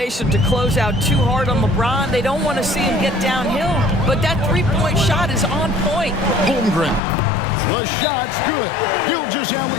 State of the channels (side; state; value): right; drops out; at 7.0 s